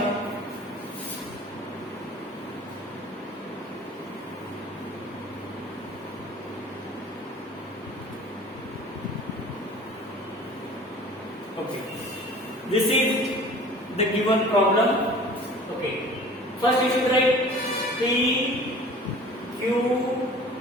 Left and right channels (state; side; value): normal; both; correlation 0.45